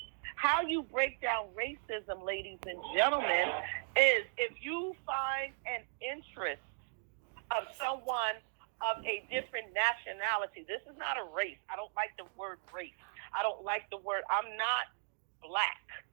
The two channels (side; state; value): left; silent; digital silence